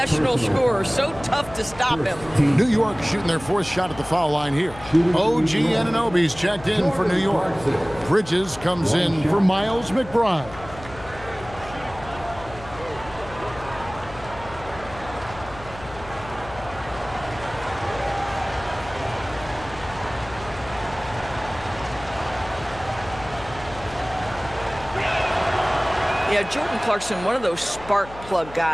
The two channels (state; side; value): noise; left; hum, 16 dB below the sound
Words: scorer, so tough to stop him. New York shooting their 4th shot at the foul line here. OG Anunoby's checked in for New York. Bridges comes in for Miles McBride. Yeah, Jordan Clarkson, one of those spark plug